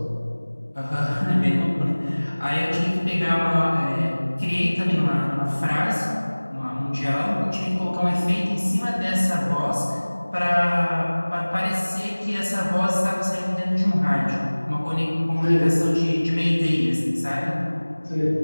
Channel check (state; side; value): inverted; both; correlation -1.00